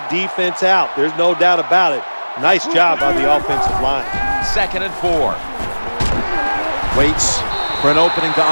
defense out. There's no doubt about it. Nice job by the offensive line. 2nd and 4. Waits for an opening to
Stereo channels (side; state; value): both; inverted; correlation -1.00